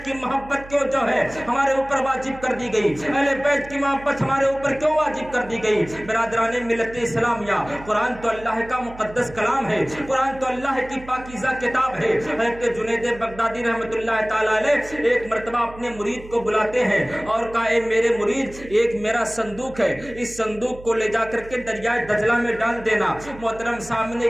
کی محبت کیوں جو ہے ہمارے اوپر واجب کر دی گئی؟ اہل بیت کی محبت ہمارے اوپر کیوں واجب کر دی گئی؟ برادران ملت اسلامیہ، قرآن تو اللہ کا مقدس کلام ہے، قرآن تو اللہ کی پاکیزہ کتاب ہے۔ حضرت جنید بغدادی رحمۃ اللہ تعالی علیہ ایک مرتبہ اپنے مرید کو بلاتے ہیں اور کہا، اے میرے مرید، ایک میرا صندوق ہے، اس صندوق کو لے جا کر کے دریائے دجلہ میں ڈال دینا۔ محترم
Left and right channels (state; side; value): noise; right; hum, 17 dB below the sound